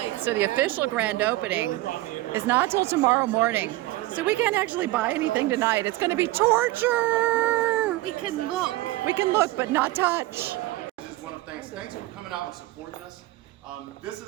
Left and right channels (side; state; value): left; quieter; 17.8 dB